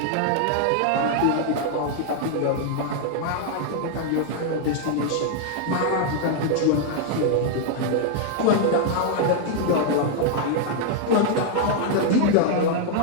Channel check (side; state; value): both; different; correlation 0.00